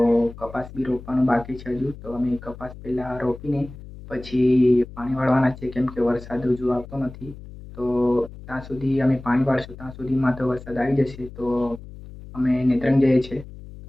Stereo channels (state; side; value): noise; left; hum, 15 dB below the sound